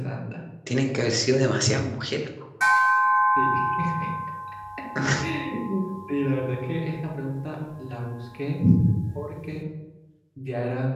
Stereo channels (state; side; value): identical; both; correlation 1.00